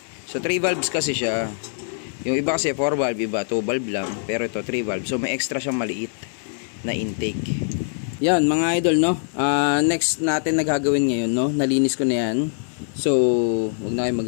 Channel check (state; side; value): silent; right; digital silence